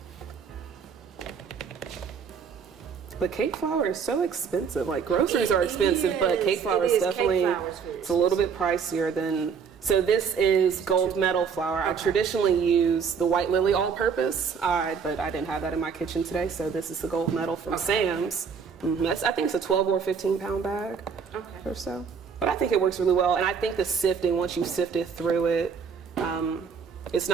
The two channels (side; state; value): left; quieter; 6.3 dB